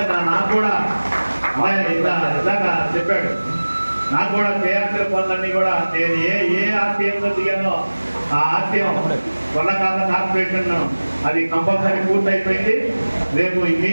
నాకు కూడా ఇందాక చెప్పాడు, నాకు కూడా చేయాల్సిన పనులన్నీ కూడా నేను ఏ ఆశయంతో దిగానో ఆ ఆశయం కొల్లకాల కార్పొరేషన్ అది కంపల్సరీ పూర్తయిపోయింది. రేపు ఈ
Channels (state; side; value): inverted; both; correlation -1.00